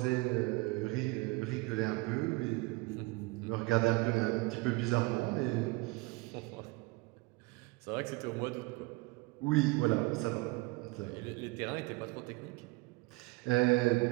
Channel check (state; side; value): quieter; left; 24.9 dB